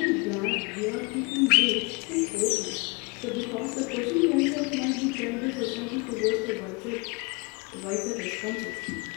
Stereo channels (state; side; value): quieter; right; 29.2 dB